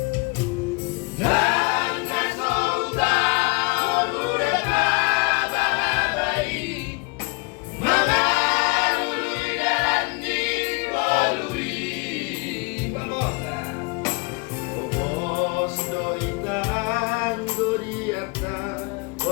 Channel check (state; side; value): quieter; right; 29.8 dB